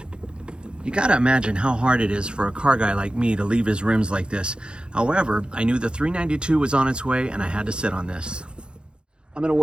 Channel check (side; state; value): left; late; 0.052 ms